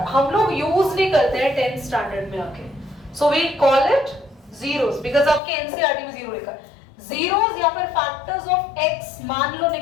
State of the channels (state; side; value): drops out; right; at 5.4 s